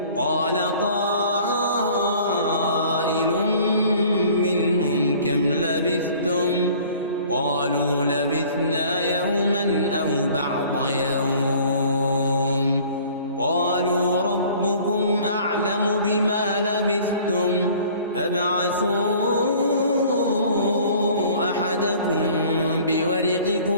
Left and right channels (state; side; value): inverted; both; correlation -0.51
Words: قال قائل منهم كم لبثتم قالوا لبثنا يوما أو بعض يوم قالوا ربكم أعلم بما لبثتم فابعثوا أحدكم